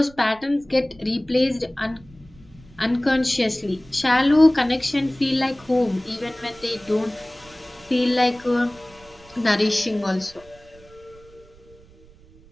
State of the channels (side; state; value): right; noise; rumble, 25 dB below the sound